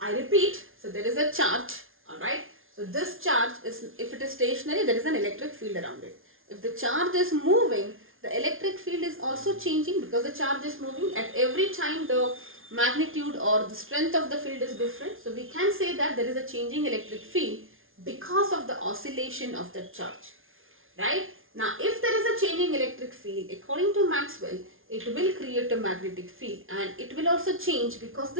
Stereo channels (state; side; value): late; left; 0.60 ms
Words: repeat, so there is a charge, alright. So this charge is, if it is stationary, there is an electric field around it. If the charge is moving, the electric field is also changing because the charge is moving. At every time the magnitude or the strength of the field is different. So we can say that there is a changing electric field because of the oscillation of the charge. Right? Now, if there is a changing electric field, according to Maxwell, it will create a magnetic field, and it will also change because